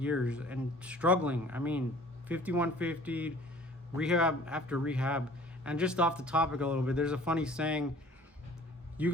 and struggling. I mean, 5150, rehab after rehab. And just off the topic a little bit, there's a funny saying, you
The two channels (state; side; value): normal; both; correlation 0.50